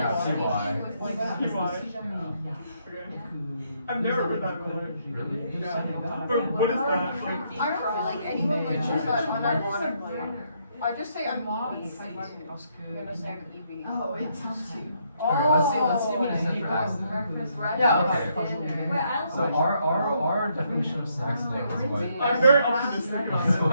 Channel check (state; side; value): inverted; both; correlation -0.74